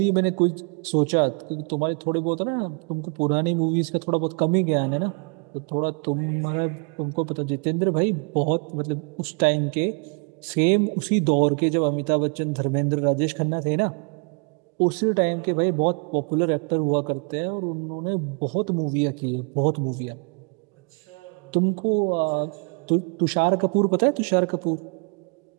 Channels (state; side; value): quieter; left; 36.2 dB